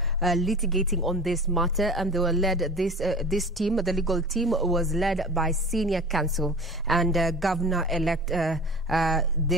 litigating on this matter, and they were led, this team, the legal team, was led by senior counsel and Governor-elect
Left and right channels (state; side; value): normal; both; correlation 0.37